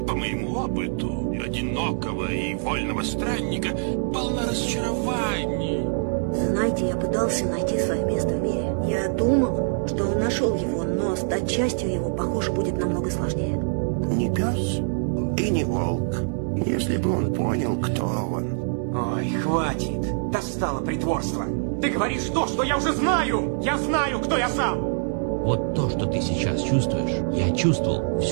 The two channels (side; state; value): left; silent; 62 dB below the other